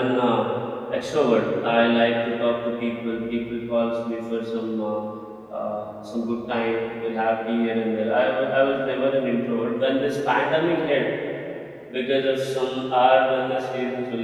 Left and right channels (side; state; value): both; identical; correlation 1.00